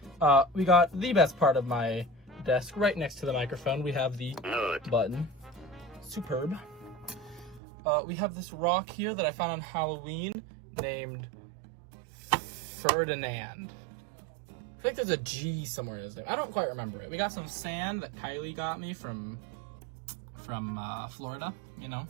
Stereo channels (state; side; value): drops out; left; at 7.6 s